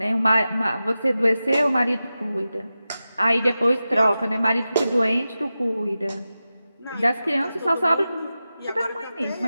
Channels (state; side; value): inverted; both; correlation -0.93